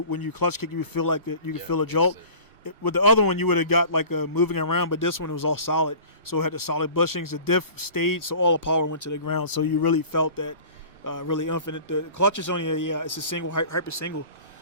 you clutch kick, you feel like that you could feel a jolt. With the other one, you would have got like a moving around, but this one was all solid. So it had the solid bushings. The diff stayed, so all the power went to the ground. So you really felt that really infinite. The clutch is only it's a single, hyper single.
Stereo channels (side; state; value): both; inverted; correlation -0.42